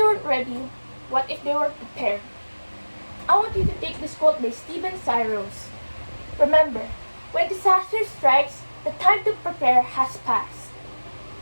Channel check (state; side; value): inverted; both; correlation -1.00